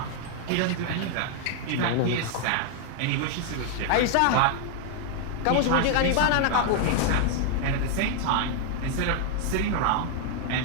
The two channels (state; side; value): different; both; correlation 0.00